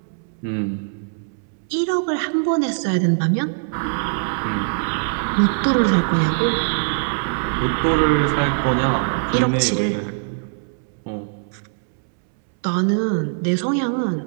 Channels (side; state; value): left; silent; 65 dB below the other